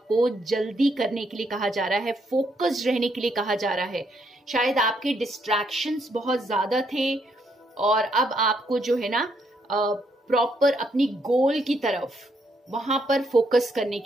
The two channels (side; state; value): both; normal; correlation 0.74